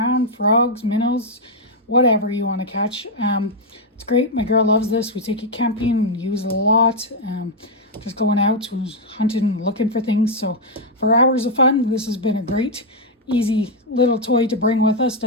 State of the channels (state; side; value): normal; both; correlation -0.01